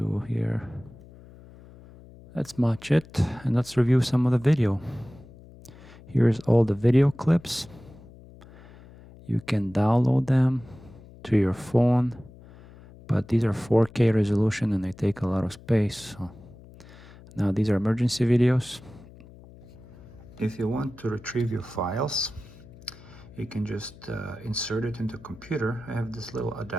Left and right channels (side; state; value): left; noise; hum, 21 dB below the sound